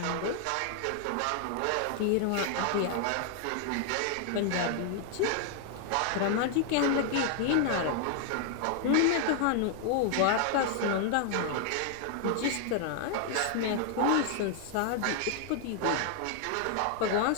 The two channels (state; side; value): different; both; correlation 0.00